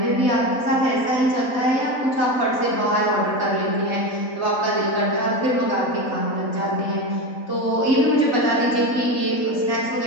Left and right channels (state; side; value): late; right; 3.3 ms